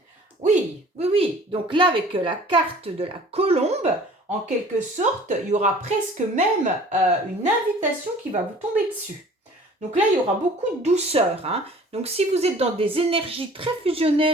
Oui, oui, oui. Donc là, avec la carte de la colombe, en quelque sorte, il y aura presque même une invitation qui va vous tomber dessus. Donc là, il y aura beaucoup de douceur, hein. Donc si vous êtes dans des énergies très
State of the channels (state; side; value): normal; both; correlation 0.49